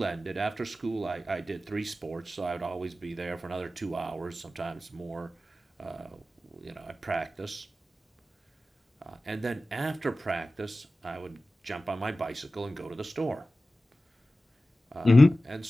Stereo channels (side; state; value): both; normal; correlation 0.95